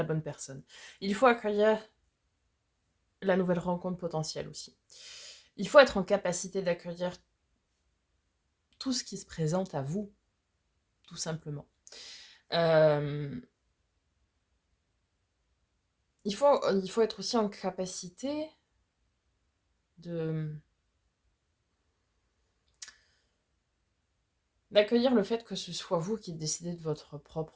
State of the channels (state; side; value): identical; both; correlation 1.00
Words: bonne personne. Il faut accueillir la nouvelle rencontre potentielle aussi. Il faut être en capacité d'accueillir tout ce qui se présente à vous, tout simplement. Il faut être aussi en capacité d'accueillir le fait que ce soit vous qui décidez de votre